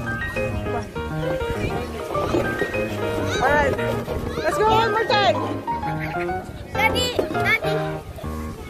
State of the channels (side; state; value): both; identical; correlation 1.00